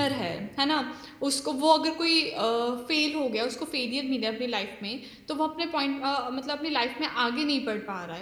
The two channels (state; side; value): identical; both; correlation 1.00